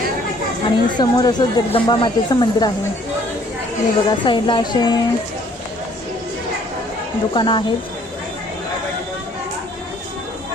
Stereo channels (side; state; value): both; normal; correlation 0.60